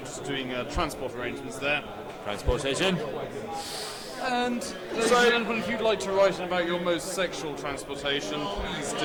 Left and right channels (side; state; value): both; identical; correlation 1.00